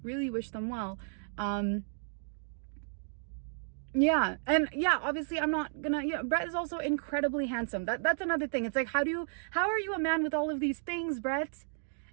really wish them well. Yeah, and yeah, obviously I'm not gonna, yeah, Brett is also incredibly handsome. That's another thing. It's like, how are you a man with all of these things, Brett?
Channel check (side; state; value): left; silent; digital silence